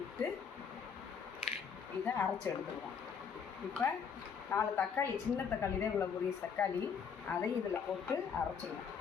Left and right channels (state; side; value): quieter; right; 6.6 dB